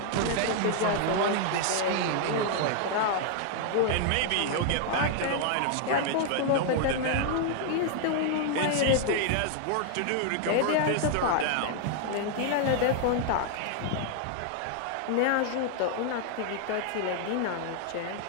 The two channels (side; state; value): both; different; correlation 0.00